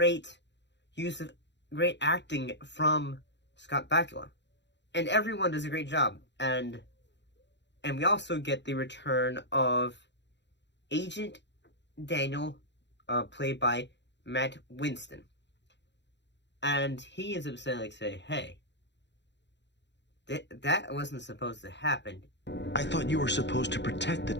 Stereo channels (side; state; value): right; late; 0.52 ms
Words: use of great acting from Scott Bakula. And everyone does a great job. And we also get the return of Agent Daniel, played by Matt Winston. And he ends up saying, hey, that wasn't supposed to happen. I thought you were supposed to protect the